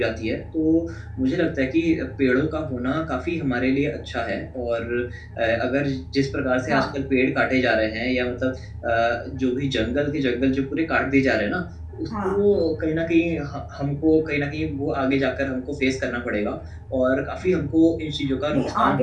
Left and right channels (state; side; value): identical; both; correlation 1.00